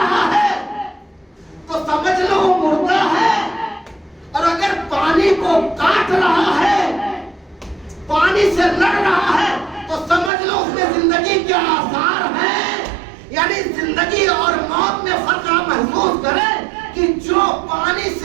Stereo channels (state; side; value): drops out; left; at 10.3 s